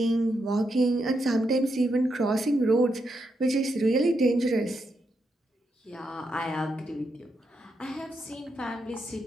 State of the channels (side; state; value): both; normal; correlation 0.82